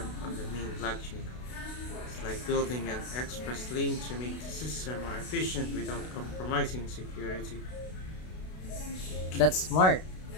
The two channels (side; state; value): right; late; 32 ms